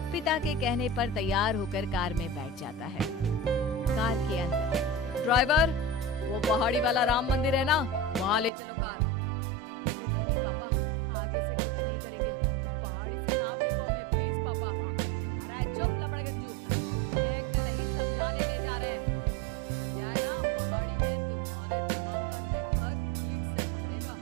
पिता के कहने पर तैयार होकर कार में बैठ जाता है। कार के अंदर, ड्राइवर, वो पहाड़ी वाला राम मंदिर है ना, वहाँ ले चलो कार। अरे नहीं नहीं पापा, आगे से गलती नहीं करेंगे, पहाड़ी से ना फेंको हमें प्लीज पापा। अरे चुप लपड़गंजू, फेंकने नहीं समझाने ले जा रहे हैं। क्या है ना, पहाड़ी में तुम्हारे दिमाग का नेटवर्क ठीक से पकड़ेगा।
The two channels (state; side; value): drops out; left; at 8.5 s